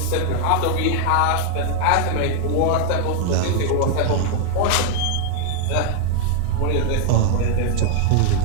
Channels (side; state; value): both; different; correlation 0.00